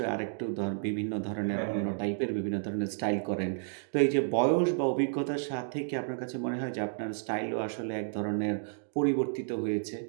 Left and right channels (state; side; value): silent; left; digital silence